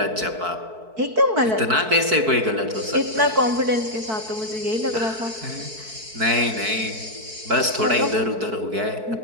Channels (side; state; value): left; late; 4.6 ms